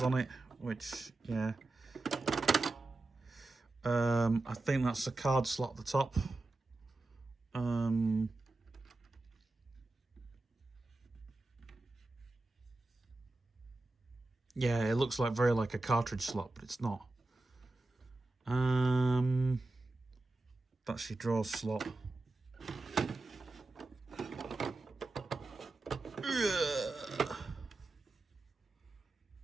on it, which, yeah. I think that's a card slot at the top. Yeah, it looks like very like a cartridge slot, but it's not. That's your draw slot.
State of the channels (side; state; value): left; quieter; 3.1 dB